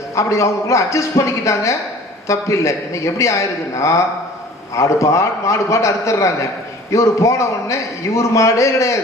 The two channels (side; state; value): both; normal; correlation 0.47